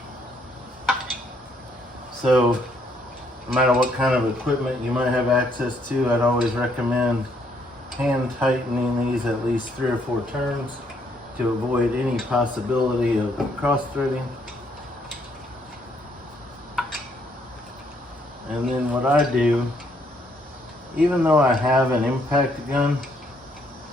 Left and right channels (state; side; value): normal; both; correlation 0.70